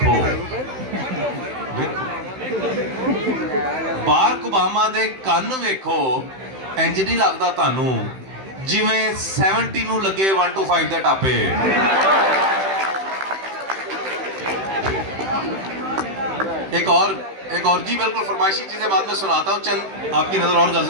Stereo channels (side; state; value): left; late; 16 ms